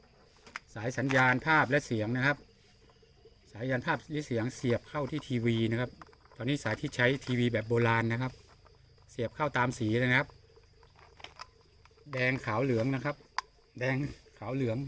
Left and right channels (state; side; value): identical; both; correlation 1.00